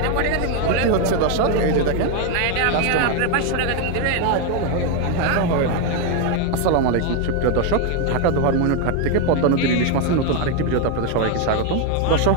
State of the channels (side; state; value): both; different; correlation 0.01